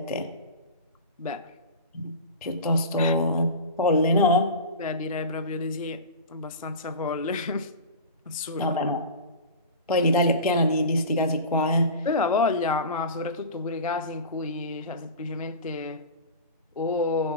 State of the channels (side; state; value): both; inverted; correlation -0.31